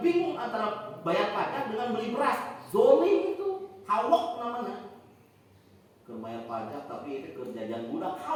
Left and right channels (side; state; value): both; identical; correlation 1.00